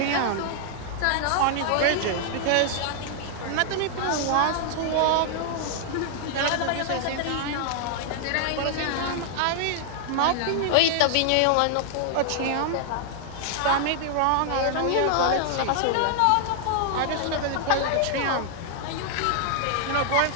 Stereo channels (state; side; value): different; both; correlation 0.00